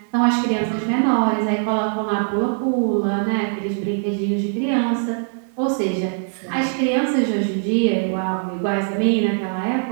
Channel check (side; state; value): left; silent; 64 dB below the other